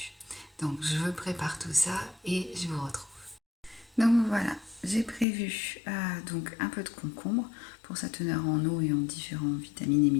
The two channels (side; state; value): right; drops out; at 5.2 s